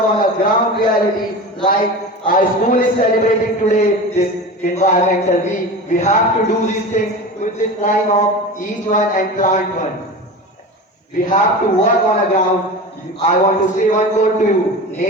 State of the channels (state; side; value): normal; both; correlation 0.30